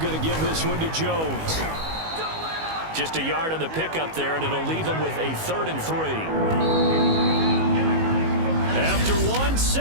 going to give this one to Jones. Just a yard on the pickup there, and it'll leave him with a 3rd and 3. After one,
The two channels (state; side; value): late; left; 19 ms